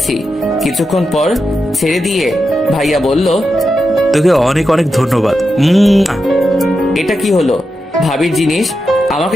কিছুক্ষণ পর ছেড়ে দিয়ে ভাইয়া বলল, তোকে অনেক অনেক ধন্যবাদ। এটা কি হলো? ভাবির জিনিস আমাকে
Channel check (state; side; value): normal; both; correlation 0.88